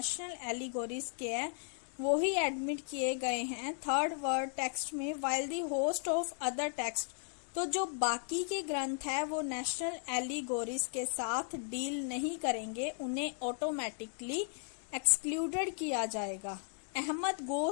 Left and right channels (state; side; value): silent; right; 54 dB below the other